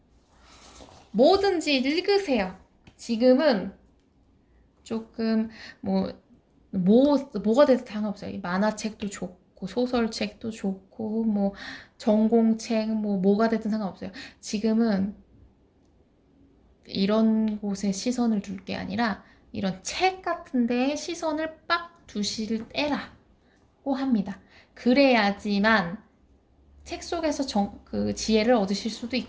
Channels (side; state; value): both; identical; correlation 1.00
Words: 뭐든지 읽으세요. 지금은 조금 뭐가 돼도 상관없어요. 만화책도 좋고 소설책도 좋고 뭐 전공책 뭐가 됐든 상관없어요. 지금은 이런 곳에 시선을 둘 게 아니라 이런 책 같은 데에 시선을 빡 두실 때라고 합니다. 그래야지만 책 속에서 그 지혜를 얻으실 수도